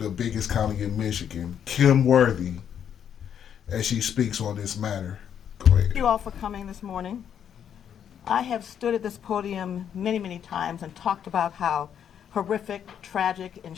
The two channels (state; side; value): quieter; right; 8.8 dB